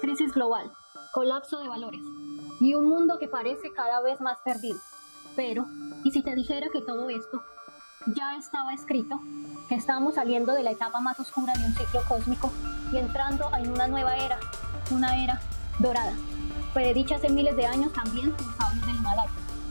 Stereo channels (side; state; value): both; inverted; correlation -1.00